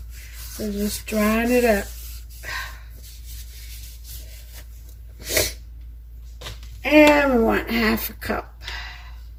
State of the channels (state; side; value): identical; both; correlation 1.00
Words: So just drying it up. And we want half a cup.